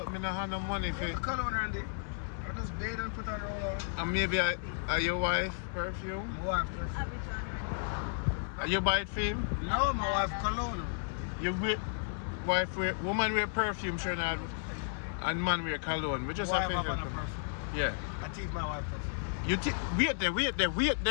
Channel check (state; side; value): silent; right; digital silence